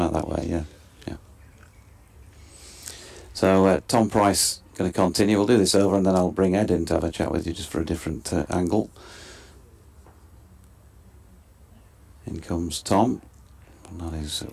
that way. Yeah. So Tom Price going to continue. We'll do this over, and then I'll bring Ed in to have a chat with you just for a different angle. In comes Tom. And that is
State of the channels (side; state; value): both; identical; correlation 1.00